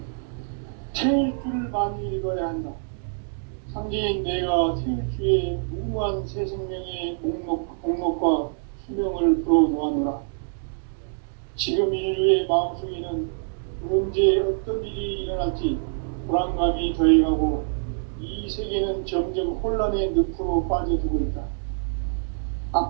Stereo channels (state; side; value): silent; left; 61 dB below the other